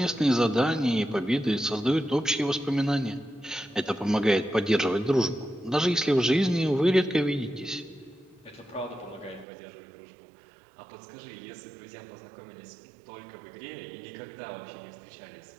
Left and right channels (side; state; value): left; drops out; at 9.5 s